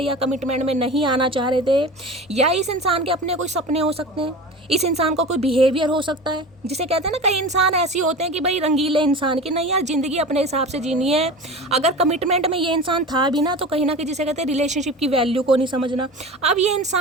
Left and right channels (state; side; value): normal; both; correlation 0.33